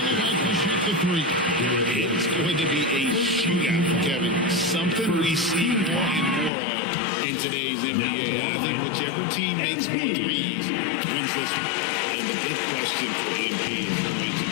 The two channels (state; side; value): drops out; right; at 6.5 s